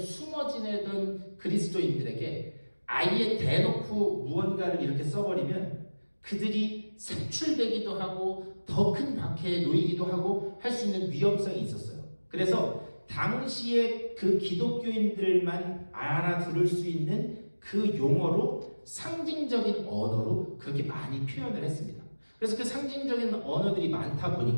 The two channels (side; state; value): both; inverted; correlation -1.00